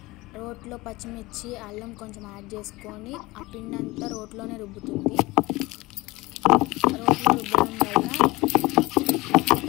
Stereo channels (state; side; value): quieter; right; 21.3 dB